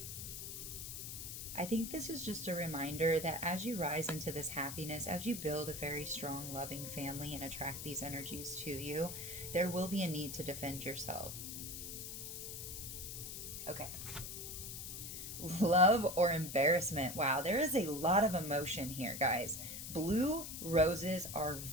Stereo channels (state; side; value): noise; left; hiss, 7 dB below the sound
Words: I think this is just a reminder that as you rise into this happiness, as you build a very strong, loving family and attract these energies to you, there will be a need to defend yourself. Okay. Love or embarrassment. Wow, there is a lot of emotion here, guys. Blue roses are